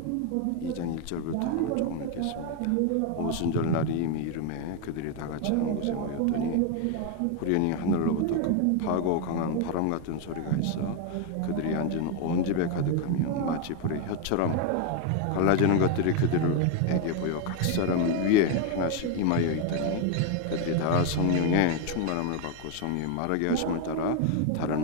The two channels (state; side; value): different; both; correlation 0.01